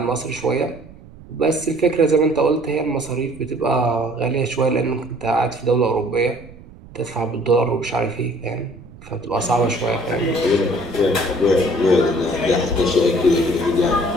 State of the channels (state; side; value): noise; right; rumble, 20 dB below the sound